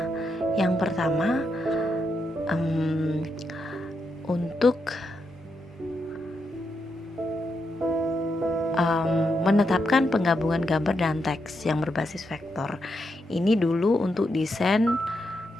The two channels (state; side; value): normal; both; correlation 0.83